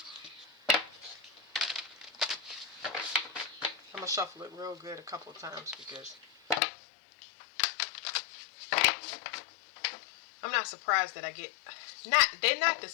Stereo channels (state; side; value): drops out; right; at 6.6 s